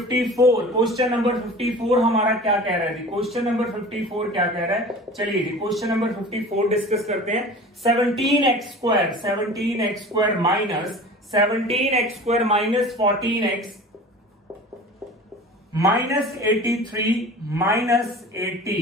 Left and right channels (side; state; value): both; normal; correlation 0.39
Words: हमारा क्या कह रहा है जी, क्वेश्चन नंबर 54 क्या कह रहा है, चलिए जी क्वेश्चन नंबर 54 डिस्कस करते हैं। 17x square minus 17x minus 14x minus 83